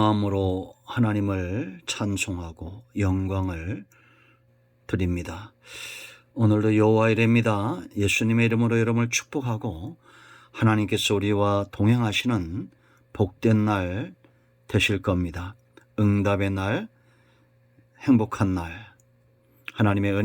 하나님을 찬송하고 영광을 드립니다. 오늘도 여호와 이레입니다. 예수님의 이름으로 여러분을 축복하고 하나님께서 우리와 동행하시는 복된 날 되실 겁니다. 응답의 날, 행복한 날, 하나님의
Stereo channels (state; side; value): identical; both; correlation 1.00